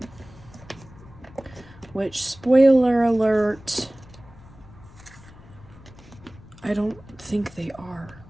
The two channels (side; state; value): left; noise; rumble, 21 dB below the sound